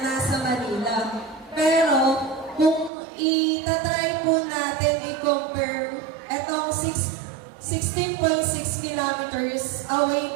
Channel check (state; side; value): drops out; left; at 2.9 s